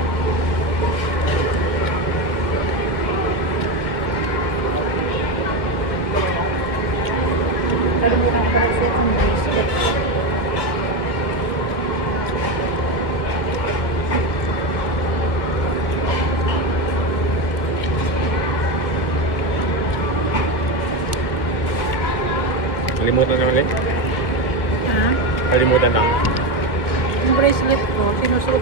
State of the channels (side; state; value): right; late; 1.6 ms